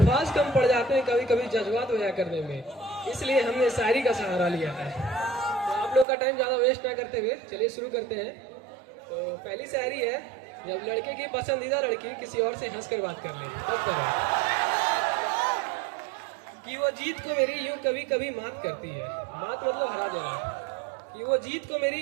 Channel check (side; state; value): left; drops out; at 6.1 s